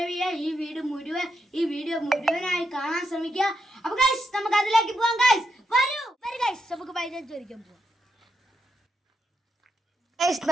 ചെയ്യുക, ഈ വീഡിയോ മുഴുവനായി കാണാൻ ശ്രമിക്കുക. അപ്പോൾ ഗൈസ് നമുക്ക് അതിലേക്ക് പോകാം ഗൈസ്. വരൂ ഗൈസ്, നമുക്ക് മൈലാഞ്ചി വരയ്ക്കാൻ പോകാം. ഗൈസ്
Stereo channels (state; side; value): normal; both; correlation 0.82